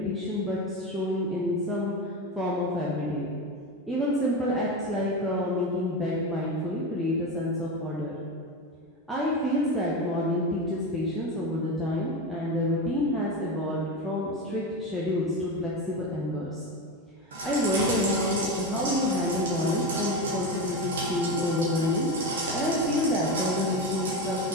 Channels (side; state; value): both; normal; correlation 0.19